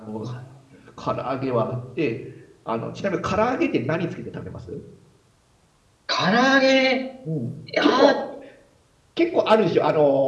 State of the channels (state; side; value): identical; both; correlation 1.00